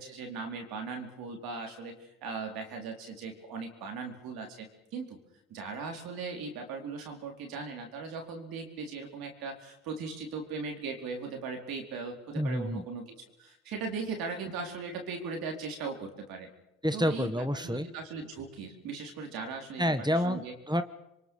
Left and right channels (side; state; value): both; normal; correlation 0.52